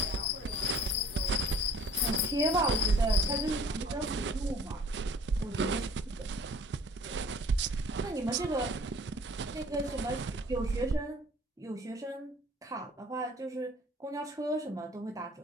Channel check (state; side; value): normal; both; correlation 0.52